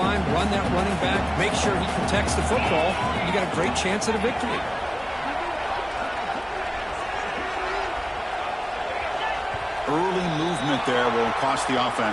run that running back, make sure he protects the football. You got a great chance at a victory. Early movement there will cost the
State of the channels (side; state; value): both; identical; correlation 1.00